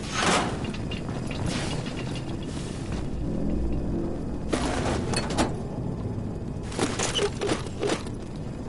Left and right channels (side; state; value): both; identical; correlation 1.00